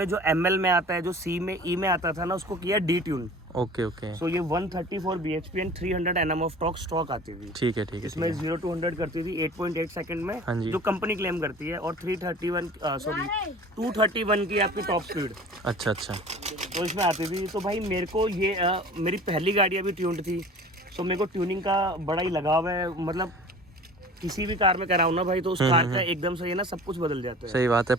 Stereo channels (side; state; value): both; normal; correlation 0.43